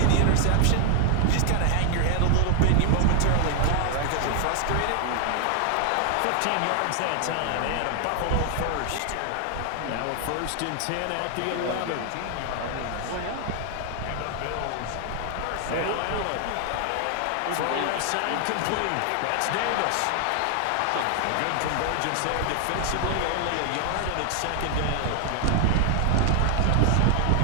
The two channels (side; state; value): both; different; correlation 0.00